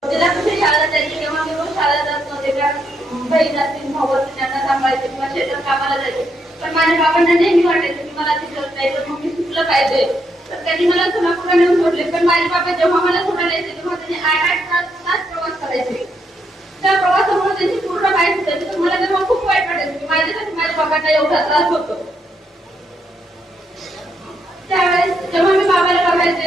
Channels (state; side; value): normal; both; correlation 0.77